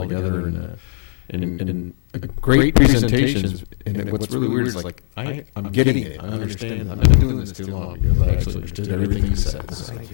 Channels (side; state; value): right; silent; 61 dB below the other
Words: together in great presentations. And what's really weird is like I'm getting it. I understand. I've been doing this too long because I actually understood everything you said. So